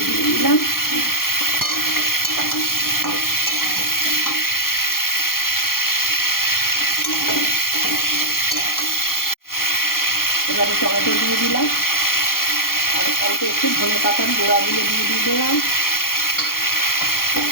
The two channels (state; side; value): late; right; 0.92 ms